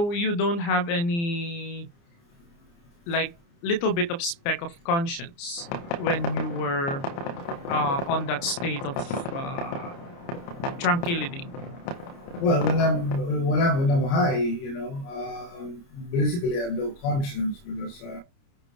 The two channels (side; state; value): right; late; 29 ms